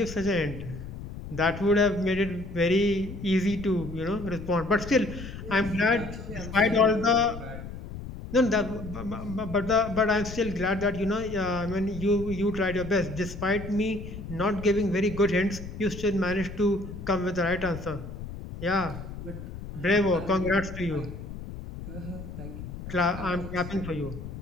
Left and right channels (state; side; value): noise; left; rumble, 10 dB below the sound